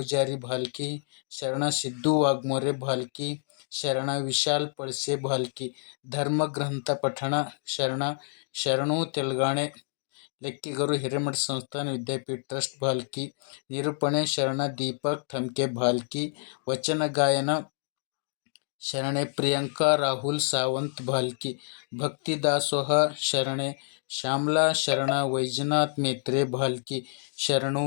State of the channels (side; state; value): right; silent; digital silence